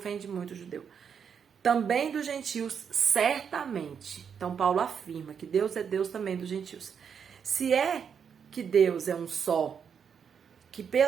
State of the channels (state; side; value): quieter; left; 7.1 dB